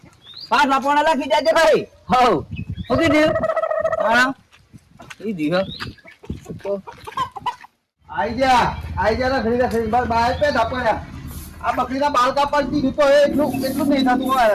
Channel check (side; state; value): both; identical; correlation 1.00